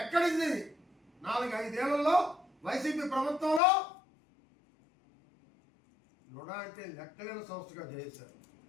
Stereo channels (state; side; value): drops out; right; at 3.6 s